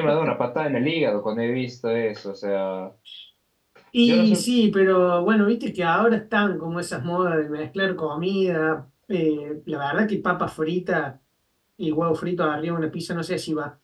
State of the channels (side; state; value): both; identical; correlation 1.00